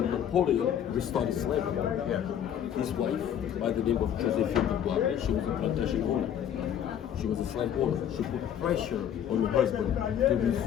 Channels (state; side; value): quieter; right; 9.6 dB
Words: Napoleon restored slavery. His wife, by the name of Josephine Dubois, she was a plantation owner. She was a slave owner. She put pressure on her husband to